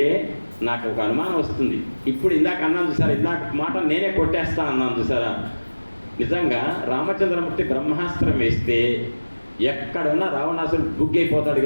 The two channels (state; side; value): inverted; both; correlation -1.00